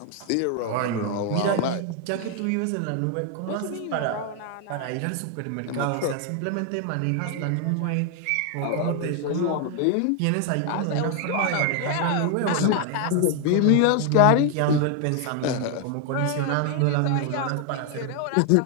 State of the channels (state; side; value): different; both; correlation 0.00